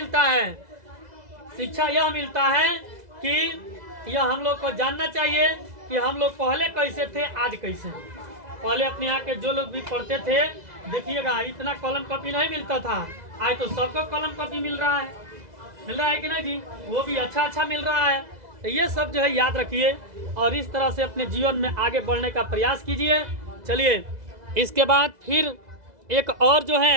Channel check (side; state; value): left; late; 2.0 ms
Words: है, शिक्षा यह मिलता है कि यह हम लोग को जानना चाहिए कि हम लोग पहले कैसे थे, आज कैसे हैं। पहले अपने यहाँ के जो लोग भी पढ़ते थे, देखिएगा इतना कलम कॉपी नहीं मिलता था, आज तो सबको कलम कॉपी मिल रहा है कि नहीं जी, वो भी अच्छा मिल रहा है। तो ये सब जो है याद रखिए और इस तरह से अपने जीवन में आगे बढ़ने का प्रयास कीजिए। चलिए इसके बाद फिर एक और जो